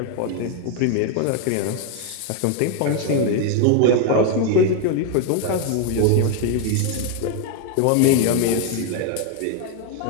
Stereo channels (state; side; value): different; both; correlation 0.01